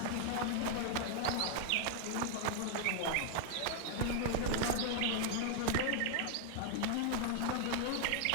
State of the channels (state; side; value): different; both; correlation 0.00